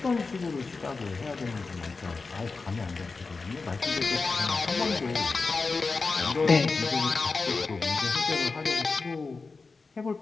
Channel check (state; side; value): quieter; right; 4.2 dB